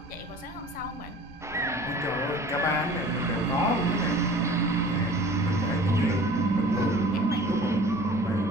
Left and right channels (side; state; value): both; normal; correlation 0.45